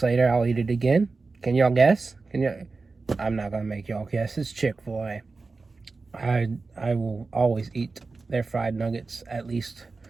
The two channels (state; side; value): quieter; left; 4.0 dB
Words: later I'll eat it again. Can y'all guess? I'm not gonna make y'all guess. It's Chick-fil-A. I will always eat their fried nuggets at least